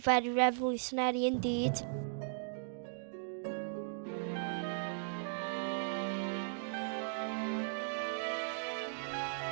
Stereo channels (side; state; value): left; silent; digital silence